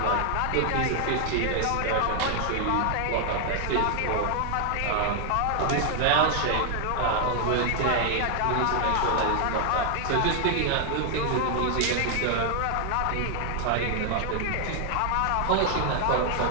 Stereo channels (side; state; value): both; different; correlation 0.00